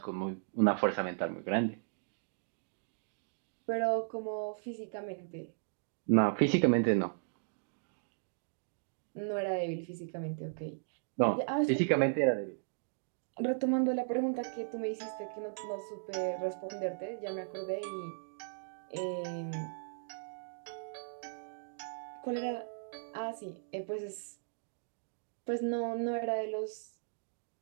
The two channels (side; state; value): left; silent; digital silence